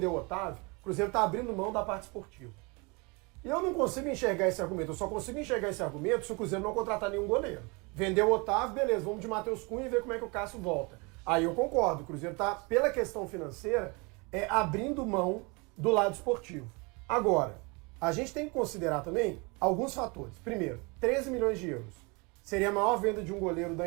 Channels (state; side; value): quieter; left; 29.0 dB